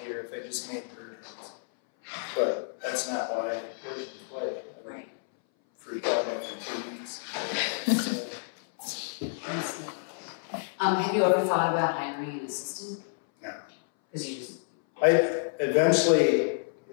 year if I just made bird heads. But that's not why I work in play. Right. Freak out after 2 weeks. Have you ever thought about hiring an assistant? No. Because you just... Eventually,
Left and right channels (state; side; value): silent; right; 58 dB below the other